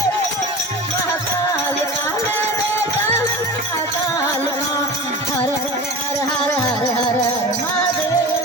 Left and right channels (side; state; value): both; normal; correlation 0.33